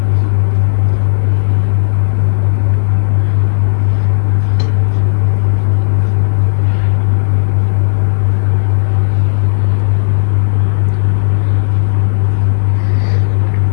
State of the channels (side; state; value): right; silent; digital silence